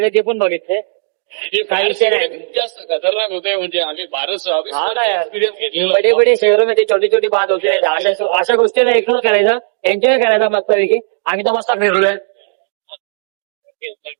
ते पण बघितले. काही विषय नाही. जास्त खतरनाक होते म्हणजे आम्ही फारच बडे बडे शहरामध्ये छोटी छोटी बात होते. अशा गोष्टीला इग्नोर करायचा. एन्जॉय करायचा मस्तपैकी. आम्ही तर मस्त फिरलोय.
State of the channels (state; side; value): silent; left; digital silence